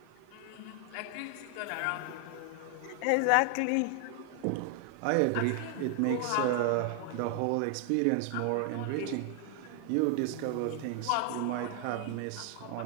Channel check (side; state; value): both; different; correlation 0.00